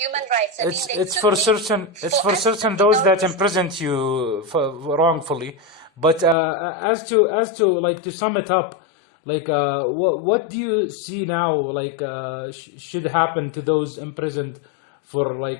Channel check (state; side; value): drops out; right; at 6.4 s